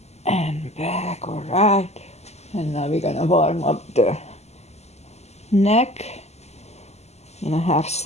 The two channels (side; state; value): right; late; 0.32 ms